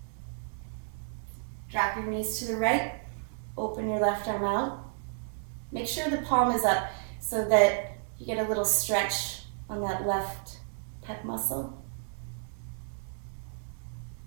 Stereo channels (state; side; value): silent; left; digital silence